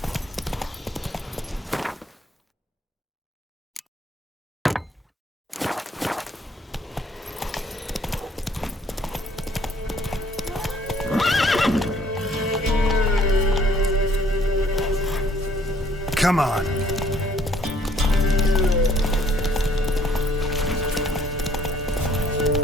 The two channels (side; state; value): both; normal; correlation 0.62